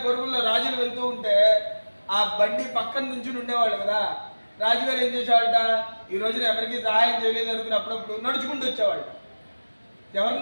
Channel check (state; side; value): inverted; both; correlation -1.00